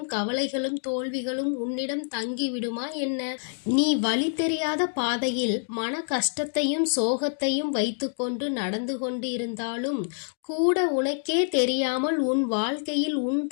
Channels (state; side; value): silent; right; digital silence